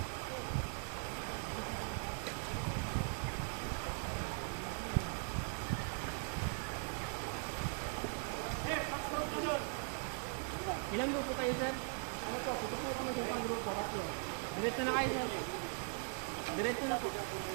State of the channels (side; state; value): left; silent; 51 dB below the other